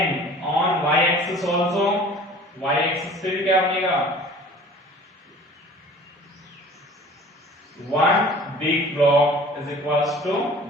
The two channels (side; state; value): both; normal; correlation 0.46